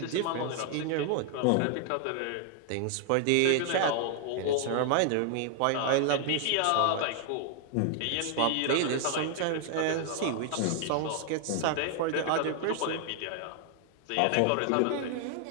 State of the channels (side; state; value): both; different; correlation 0.00